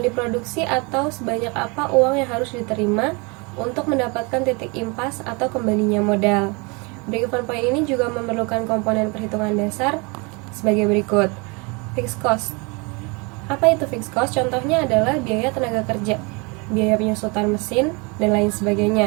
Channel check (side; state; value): left; quieter; 29.8 dB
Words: diproduksi atau sebanyak apa uang yang harus diterima untuk mendapatkan titik impas atau kembalinya modal. Break-even point ini juga memerlukan komponen perhitungan dasar sebagai berikut. Fixed cost. Apa itu fixed cost? Contohnya adalah biaya tenaga kerja, biaya penyusutan mesin, dan lain